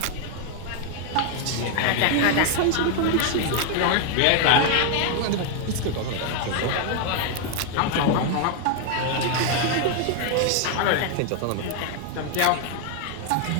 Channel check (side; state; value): both; different; correlation 0.01